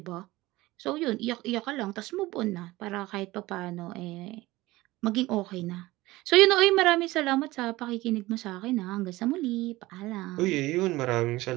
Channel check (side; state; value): left; quieter; 18.9 dB